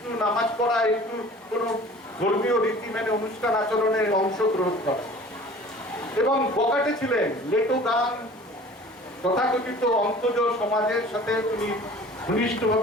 নামাজ পড়া, একটু কোন ধর্মীয় রীতি মেনে অনুষ্ঠান আচরণে অংশগ্রহণ করা, এবং বকাটে ছিলেন। লেটো গান, তথাকথিত অন্তজ সমাজের সাথে তিনি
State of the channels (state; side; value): normal; both; correlation 0.46